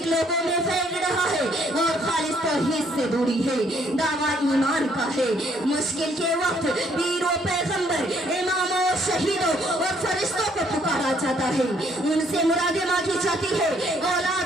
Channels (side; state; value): both; normal; correlation 0.66